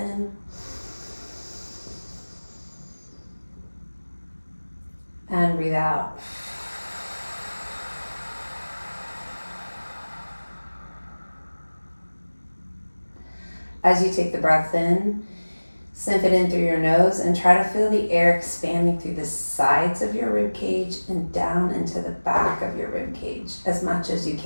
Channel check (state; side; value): inverted; both; correlation -1.00